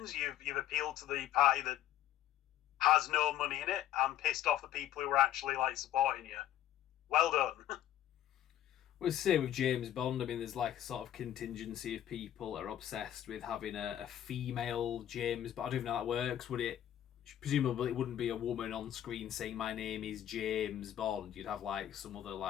you've appealed to the party that has no money in it and pissed off the people who are actually like supporting you. Well done. Well, say with James Bond, I mean, there's like a sort of contingency of people that are obsessed with having a female James, but I don't even know how that works. Would it? Presumably it wouldn't be a woman on screen saying my name is James Bond. You'd have like some other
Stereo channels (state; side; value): quieter; right; 11.8 dB